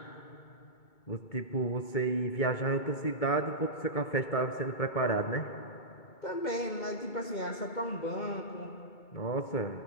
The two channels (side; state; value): right; late; 2.2 ms